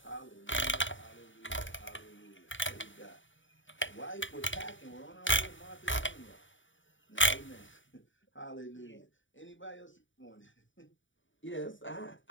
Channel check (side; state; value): right; late; 0.56 ms